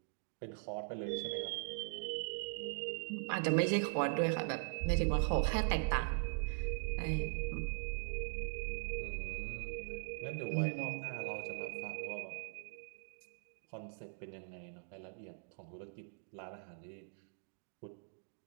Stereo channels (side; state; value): left; silent; digital silence